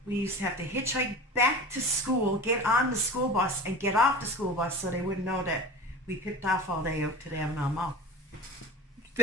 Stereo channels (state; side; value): normal; both; correlation 0.34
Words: we used to have to hitchhike back to school, get on the school bus, and get off the school bus so they wouldn't know that we picked off all day out to the Avalon Mall.